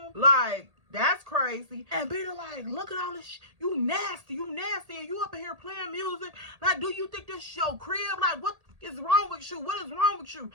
Like, that's crazy. And Bina like, look at all this you nasty, and you up in here playing music. Like, do you think this is your crib? Like, what is wrong with you? What is wrong with you?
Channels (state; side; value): late; left; 1.8 ms